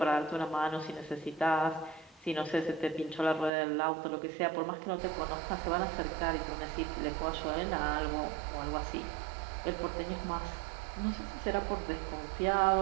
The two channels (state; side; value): drops out; left; at 3.5 s